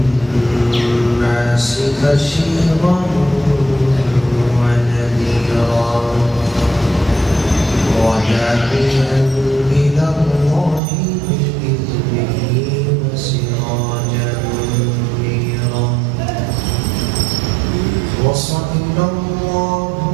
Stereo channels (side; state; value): left; drops out; at 10.8 s